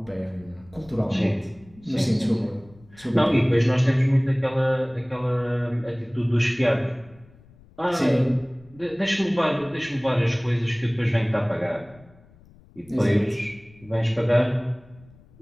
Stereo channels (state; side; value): noise; left; rumble, 26 dB below the sound